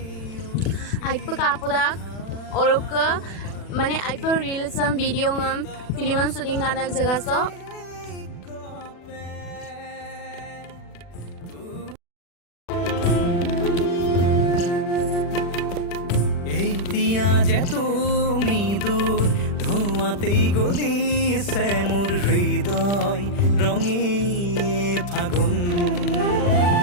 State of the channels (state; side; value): late; right; 40 ms